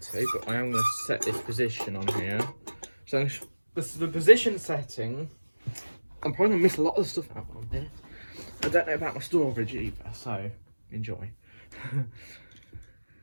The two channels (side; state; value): both; inverted; correlation -1.00